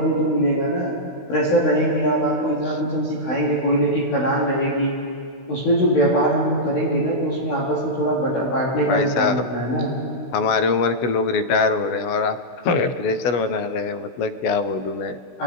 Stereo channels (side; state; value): right; late; 16 ms